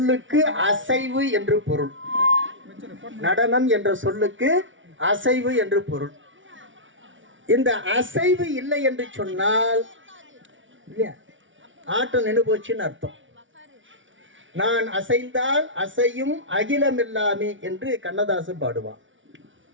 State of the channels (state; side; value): late; left; 0.56 ms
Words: அசைவு என்று பொருள். நடனம் என்ற சொல்லுக்கு அசைவு என்று பொருள். இந்த அசைவு இல்லை என்று சொன்னால் ஆட்டம் நின்று போச்சுன்னு அர்த்தம். நான் அசைந்தால் அசையும் அகிலம் எல்லாமே என்று கண்ணதாசன் பாடுவான்.